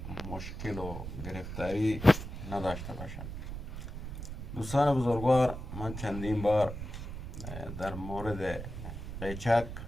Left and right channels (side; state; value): right; noise; rumble, 8 dB below the sound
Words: مشکل و گرفتاری نداشته باشند. دوستان بزرگوار، من چندین بار در مورد قیچک